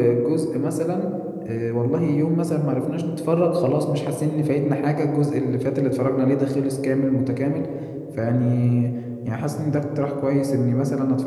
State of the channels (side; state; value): both; identical; correlation 1.00